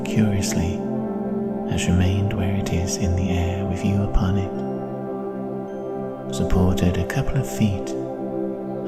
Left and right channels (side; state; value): both; identical; correlation 1.00